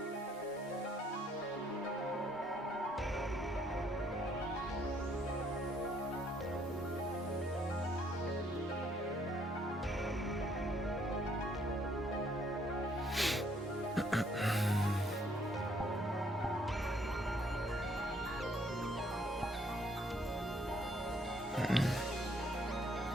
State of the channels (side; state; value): both; normal; correlation 0.66